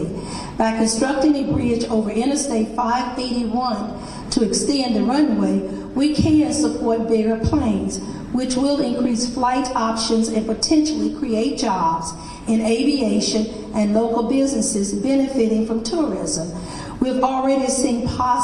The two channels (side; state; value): both; identical; correlation 1.00